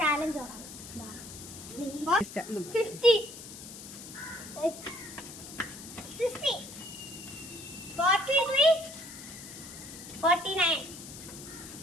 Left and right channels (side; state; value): left; noise; hiss, 13 dB below the sound